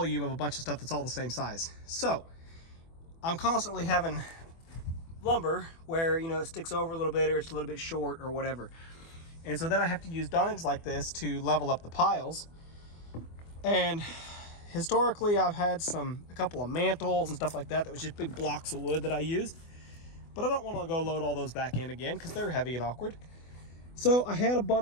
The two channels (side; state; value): right; late; 24 ms